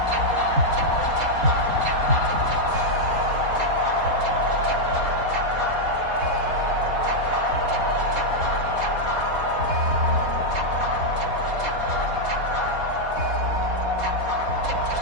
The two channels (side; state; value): left; late; 4.2 ms